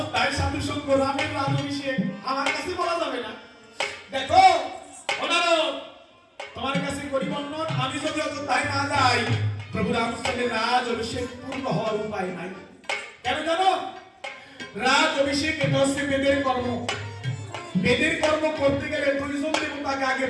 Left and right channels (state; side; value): identical; both; correlation 1.00